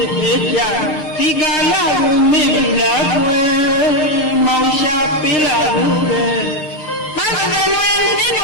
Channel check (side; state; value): right; late; 6.5 ms